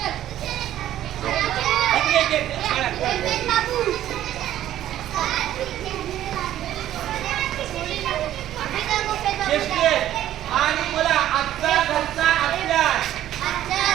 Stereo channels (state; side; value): quieter; left; 12.5 dB